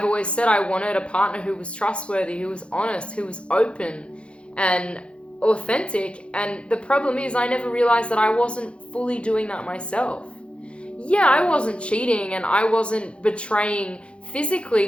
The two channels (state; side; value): late; right; 0.059 ms